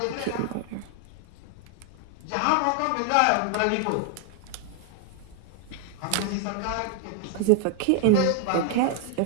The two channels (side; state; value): both; different; correlation 0.00